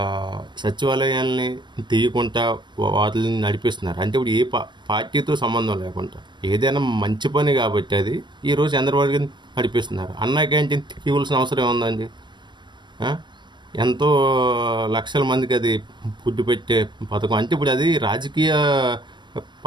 సచివాలయాల్ని తీయకుండా వాటిని నడిపిస్తున్నారు. అంటే ఇప్పుడు ఏ పార్టీతో సంబంధం లేకుండా ఏదైనా మంచి పని కాబట్టి అది ఈరోజు చంద్రబాబు గారిని నడిపిస్తున్నారు. అన్నా క్యాంటీన్ తీయవలసిన అవసరం ఏముందండి? ఎంతో లక్షల మందికి అది ఫుడ్ పెట్టే పథకం. అంటే ఇప్పుడు అది రాజకీయ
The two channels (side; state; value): left; late; 0.22 ms